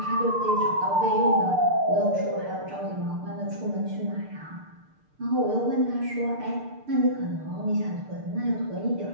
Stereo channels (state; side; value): late; left; 6.7 ms